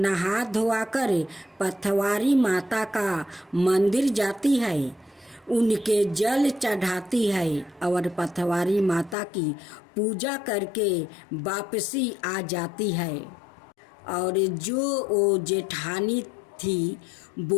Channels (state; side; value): drops out; right; at 9.2 s